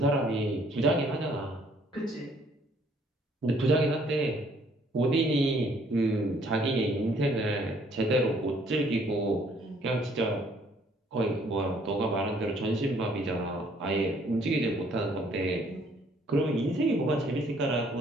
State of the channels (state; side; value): normal; both; correlation 0.63